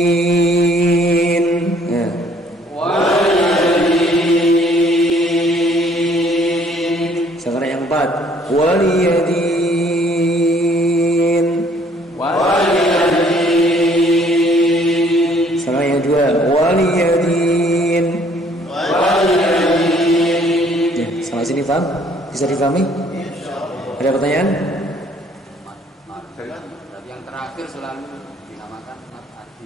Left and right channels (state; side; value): normal; both; correlation 0.61